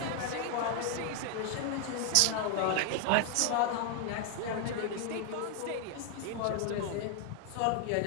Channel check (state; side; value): different; both; correlation 0.00